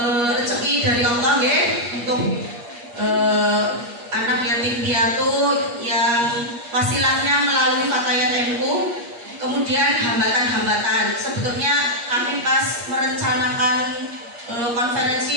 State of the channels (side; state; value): left; late; 8.4 ms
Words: rezeki dari Allah, ya, untuk anak yatim piatu yang wasilahnya melalui Fatayat NU. Kemudian hambatan-hambatan, sebetulnya kami pas merencanakan